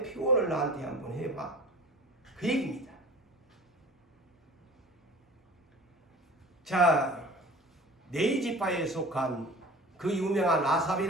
표현을 나한테 한번 해봐. 그 얘기입니다. 자, 네이지파에 속한 그 유명한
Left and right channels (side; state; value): both; normal; correlation 0.41